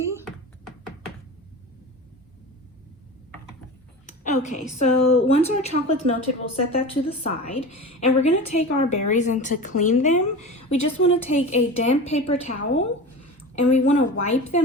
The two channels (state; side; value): normal; both; correlation 0.31